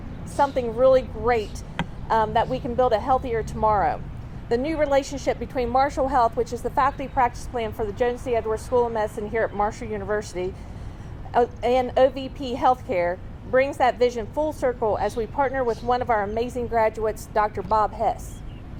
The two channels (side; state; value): both; identical; correlation 1.00